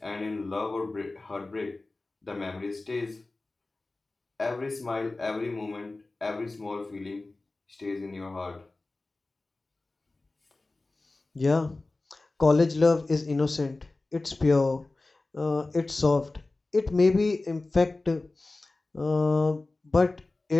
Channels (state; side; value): quieter; right; 3.2 dB